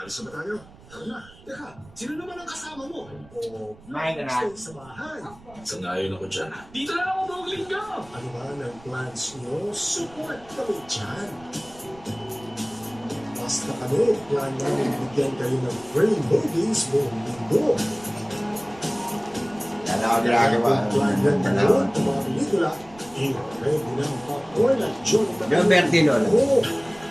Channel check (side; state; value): right; noise; rumble, 23 dB below the sound